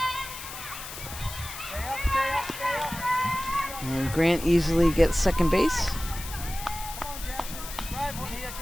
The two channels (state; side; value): noise; left; hiss, 10 dB below the sound